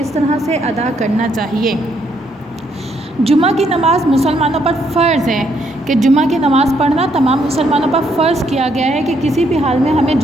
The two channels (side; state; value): both; normal; correlation 0.72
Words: طرح سے ادا کرنا چاہیے۔ جمعہ کی نماز مسلمانوں پر فرض ہے کہ جمعہ کی نماز پڑھنا تمام مسلمانوں پر فرض کیا گیا ہے کہ کسی بھی حال میں ہمیں